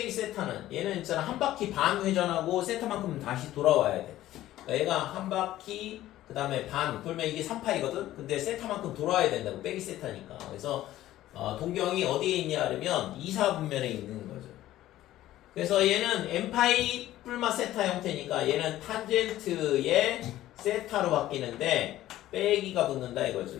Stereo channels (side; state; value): right; quieter; 14.4 dB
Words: 세타는 얘는 있잖아 한 바퀴 반 회전하고 세타만큼 다시 돌아와야 돼. 그러니까 얘가 한 바퀴 그 다음에 반 그러면 이게 3파이거든. 근데 세타만큼 돌아와야 된다고 빼기 세타니까. 그래서 동경이 어디에 있냐 그러면 2, 4분면에 있는 거죠. 그래서 얘는 n파이 뿔마 세타 형태니까 얘는 탄젠트의 세타로 바뀌는데 빼기가 붙는다 이거죠.